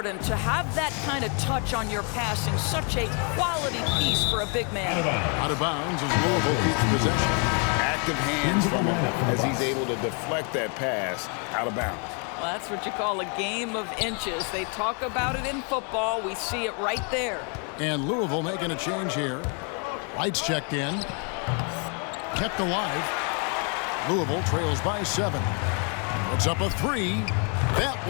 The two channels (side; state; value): right; quieter; 38.3 dB